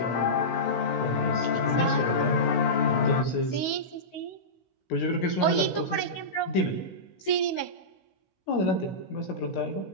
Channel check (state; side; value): late; right; 16 ms